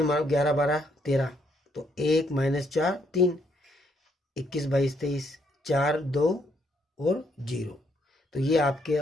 मानो 11 12 13, तो 1 माइनस 4 3, 21 22 23, 4 2 और 0। तो ये आपके,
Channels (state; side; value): normal; both; correlation 0.72